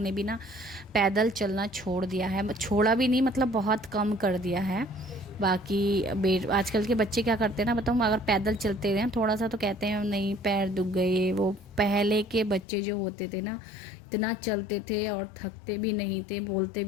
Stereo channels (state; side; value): drops out; right; at 12.7 s